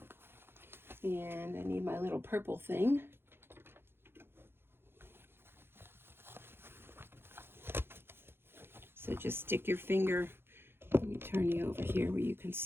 And I need my little purple thing. So just stick your finger, let me turn you over here where you can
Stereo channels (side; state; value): left; late; 0.11 ms